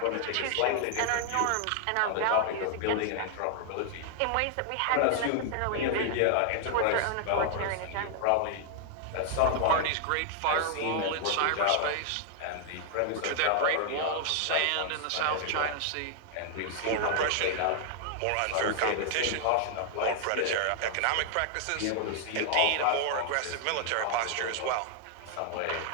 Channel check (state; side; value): different; both; correlation 0.00